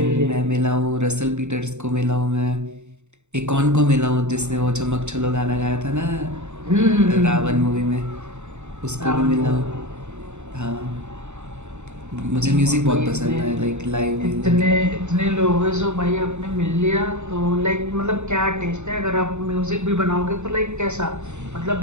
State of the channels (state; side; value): late; left; 0.83 ms